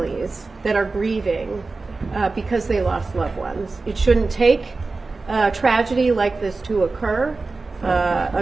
that are grieving because they lost loved ones. It shouldn't take a tragedy like this to occur.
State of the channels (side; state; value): left; quieter; 3.8 dB